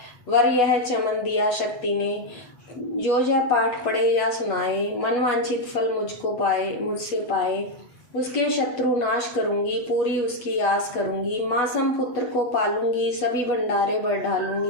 वर यह चमन दिया शक्ति ने। जो यह पाठ पढ़े या सुनाए, मनवांछित फल मुझको पाए मुझसे पाए। उसके शत्रु नाश करूंगी, पूरी उसकी आस करूंगी। मासम पुत्र को पालूंगी, सभी भंडारे बढ़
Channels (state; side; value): late; right; 8.2 ms